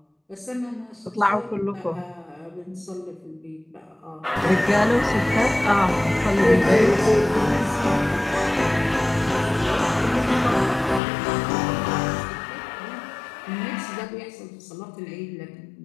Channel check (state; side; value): drops out; right; at 11.0 s